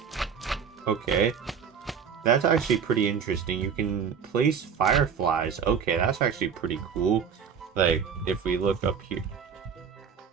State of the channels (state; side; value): quieter; left; 6.9 dB